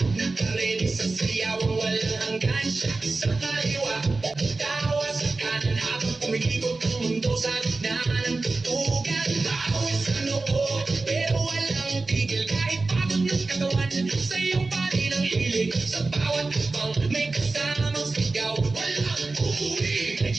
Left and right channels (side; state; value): left; quieter; 3.5 dB